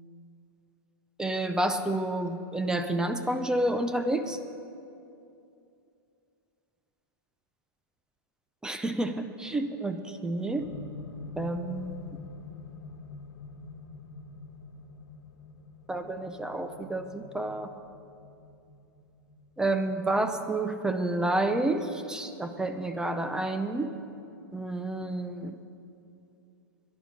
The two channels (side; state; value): both; normal; correlation 0.69